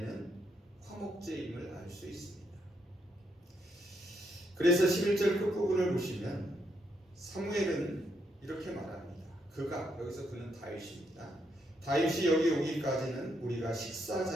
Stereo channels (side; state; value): both; normal; correlation 0.77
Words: 화목제임을 알 수 있습니다. 그래서 11절 끝부분을 보시면 사무엘은 이렇게 말합니다. 여기서 그는 다윗입니다. 다윗이 여기 오기까지는 우리가 식사